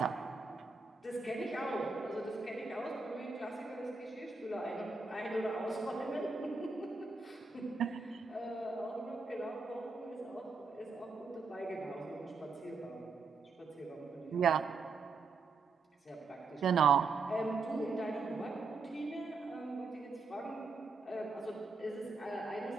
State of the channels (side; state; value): left; quieter; 4.1 dB